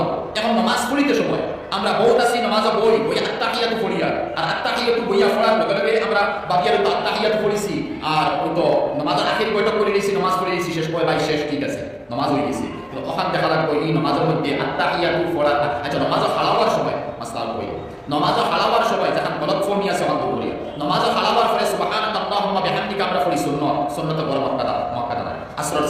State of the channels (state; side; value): identical; both; correlation 1.00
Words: এখন নমাজ পড়িতে সময় আমরা বহুত আছি নমাজে বই আত্তাহিয়াতু পড়িয়া আর আত্তাহিয়াতু বইয়া পড়ার লগে লগে আমরা বাকিয়ার তো আত্তাহিয়াতু পড়িছি আর ওই তো নমাজের আখির বইটা করে নিয়েছি নমাজ পড়ে নিয়েছি শেষ করে ভাই শেষ ঠিক আছে নমাজ হয়ে গেছে তো ওখান দেখা লাগবে এই নমাজের মধ্যে আত্তাহিয়াতু পড়া আচ্ছা নমাজে হালাওয়ার সময় মাসলাল বই নমাজে হালাওয়ার সময় যখন গলত ফর্মি আছে অন্ত করি নমাজে হালাওয়ার পরে সুবহানাকা আল্লাহুম্মা বিহামদিকা আমরা পড়ি সুন্নাত বড় মক্কাদা আসরের